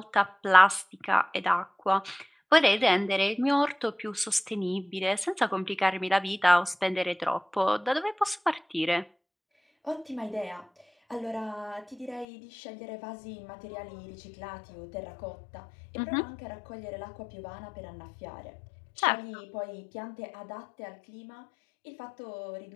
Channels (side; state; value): right; drops out; at 12.2 s